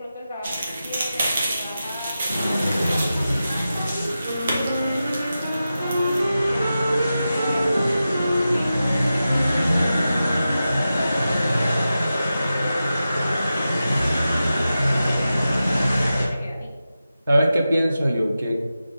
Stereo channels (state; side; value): inverted; both; correlation -0.92